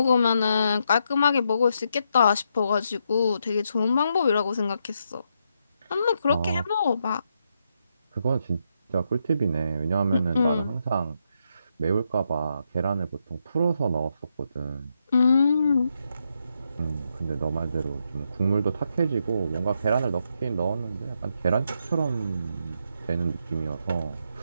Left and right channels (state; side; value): inverted; both; correlation -0.80